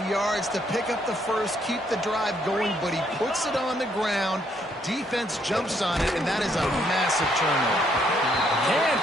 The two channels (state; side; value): normal; both; correlation 0.71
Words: yards to pick up the first, keep the drive going, but he puts it on the ground. Defense jumps on it, and that is a massive turnover. Can't